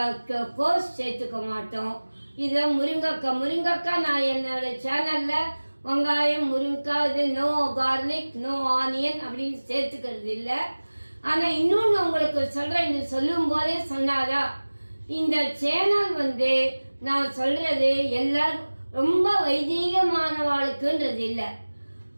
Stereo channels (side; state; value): both; inverted; correlation -1.00